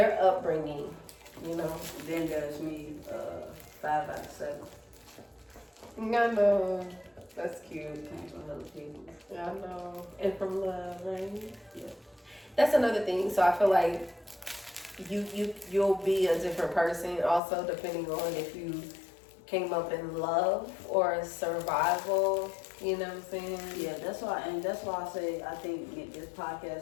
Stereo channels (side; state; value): right; drops out; at 17.4 s